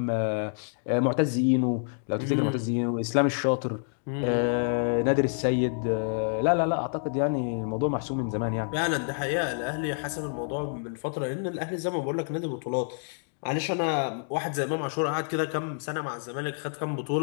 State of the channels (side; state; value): right; silent; digital silence